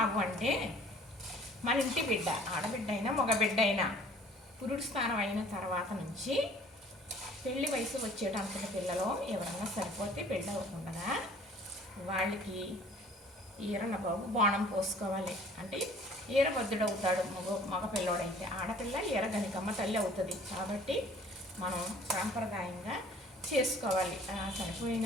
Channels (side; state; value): both; normal; correlation 0.53